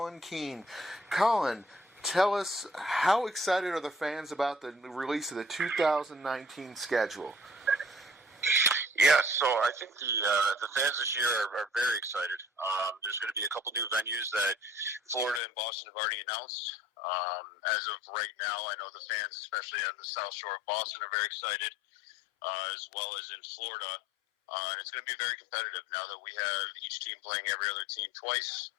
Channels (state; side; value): drops out; right; at 15.4 s